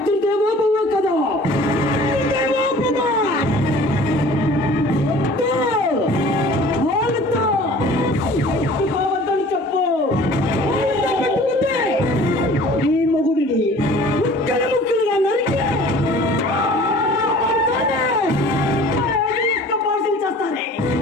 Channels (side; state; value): both; normal; correlation 0.47